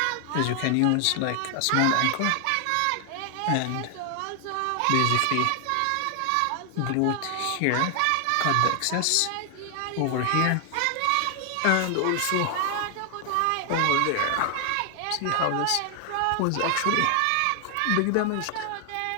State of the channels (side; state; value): both; different; correlation 0.00